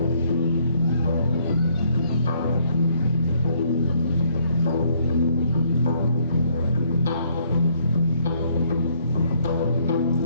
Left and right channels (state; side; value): inverted; both; correlation -0.67